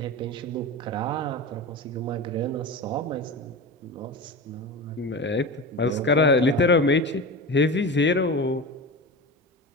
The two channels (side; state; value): both; normal; correlation 0.27